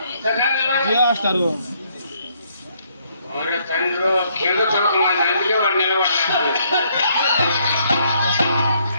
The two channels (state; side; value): inverted; both; correlation -0.69